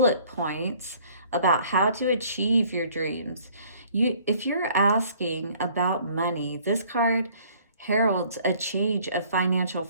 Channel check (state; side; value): inverted; both; correlation -0.57